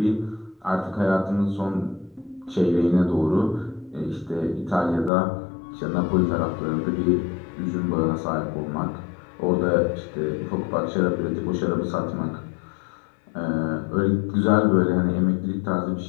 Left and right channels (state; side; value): drops out; right; at 5.1 s